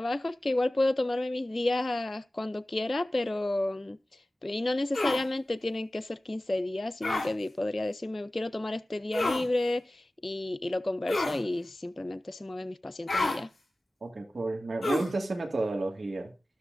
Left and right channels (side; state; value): both; normal; correlation 0.96